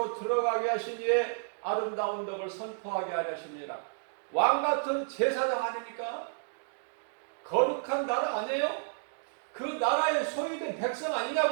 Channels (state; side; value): silent; left; digital silence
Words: 들어가게 하신 이의 아름다운 덕을 선포하게 하시니라. 왕같은 제사장 아닙니까? 거룩한 나라 아니에요? 그 나라의 소유된 백성